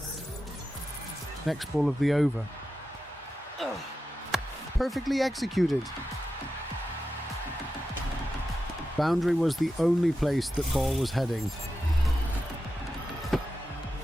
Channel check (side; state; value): both; normal; correlation 0.91